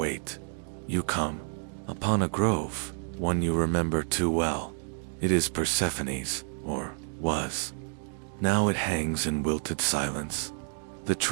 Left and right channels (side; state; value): left; silent; digital silence